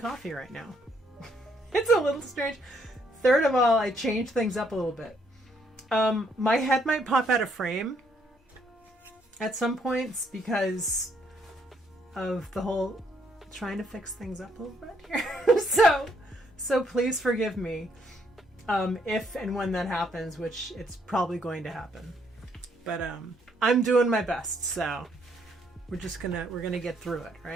right now. It's a little strange. Third of all, I changed things up a little bit. My head might pop out of frame at some points because of the whole trying to fix things up a little bit here. So please forgive me if and when that happens, which it's probably going to happen. But I'm doing my best, so we're gonna get through it,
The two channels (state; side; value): normal; both; correlation 0.70